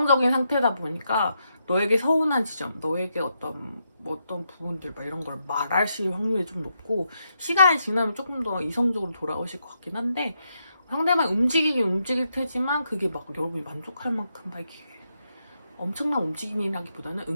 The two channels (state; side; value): inverted; both; correlation -0.81